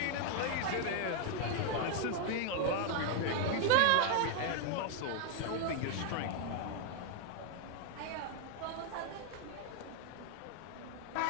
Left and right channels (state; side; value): different; both; correlation 0.00